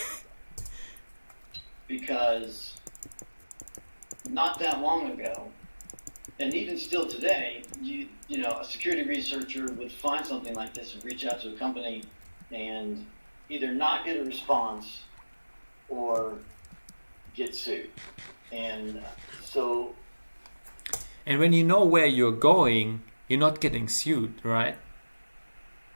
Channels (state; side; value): inverted; both; correlation -1.00